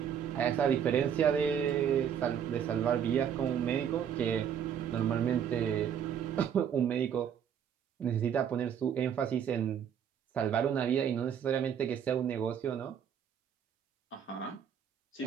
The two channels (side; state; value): left; quieter; 8.4 dB